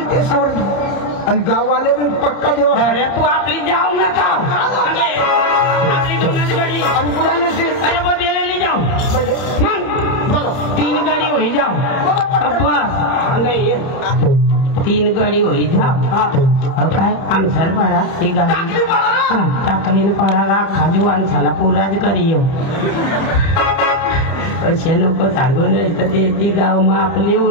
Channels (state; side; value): late; right; 30 ms